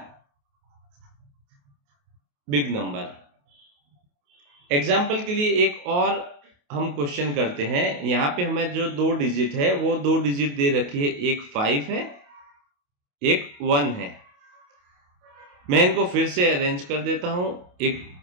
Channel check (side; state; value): left; late; 28 ms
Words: बिग नंबर। एग्जाम्पल के लिए एक और हम क्वेश्चन करते हैं। यहां पे हमें जो 2 डिजिट है वो 2 डिजिट दे रखी है, एक 5 है, एक 1 है। मैं इनको फिर से अरेंज कर देता हूं। एक